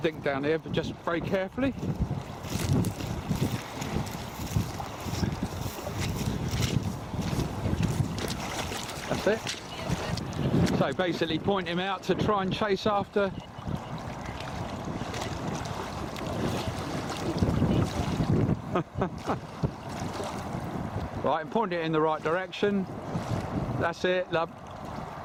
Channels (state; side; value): identical; both; correlation 1.00